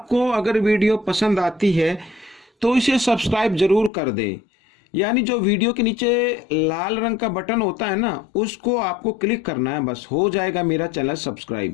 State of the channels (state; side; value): drops out; right; at 3.9 s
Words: अगर वीडियो पसंद आती है तो इसे सब्सक्राइब जरूर कर दें। यानी जो वीडियो के नीचे लाल रंग का बटन होता है ना, उसको आपको क्लिक करना है, बस हो जाएगा मेरा चैनल